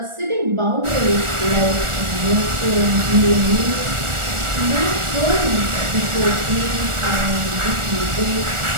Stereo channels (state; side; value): late; left; 1.4 ms